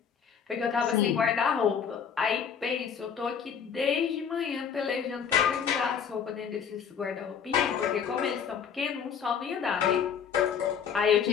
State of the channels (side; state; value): right; quieter; 7.3 dB